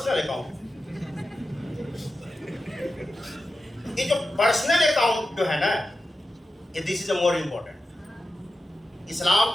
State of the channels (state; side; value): normal; both; correlation 0.92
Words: अकाउंट। ये जो पर्सनल अकाउंट जो है ना, ये this is a more important.